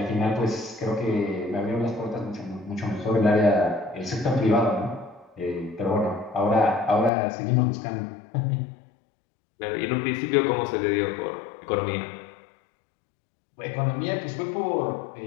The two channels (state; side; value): drops out; right; at 7.1 s